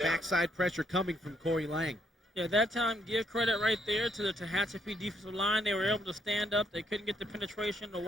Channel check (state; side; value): normal; both; correlation 0.72